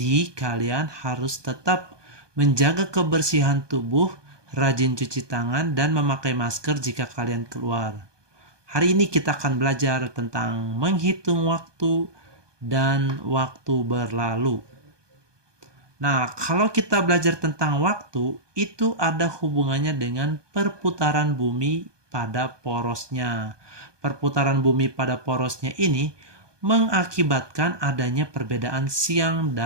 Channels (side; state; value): left; late; 1.2 ms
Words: kalian harus tetap menjaga kebersihan tubuh, rajin cuci tangan, dan memakai masker jika kalian keluar. Hari ini kita akan belajar tentang menghitung waktu dan waktu berlalu. Nah, kalau kita belajar tentang waktu, itu ada hubungannya dengan perputaran bumi pada porosnya. Perputaran bumi pada porosnya ini mengakibatkan adanya perbedaan siang